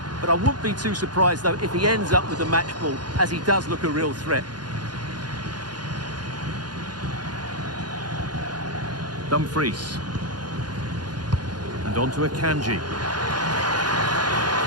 But I wouldn't be too surprised, though, if he ends up with the match ball, as he does look a real threat. Dumfries. And on to Akanji.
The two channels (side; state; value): left; late; 0.70 ms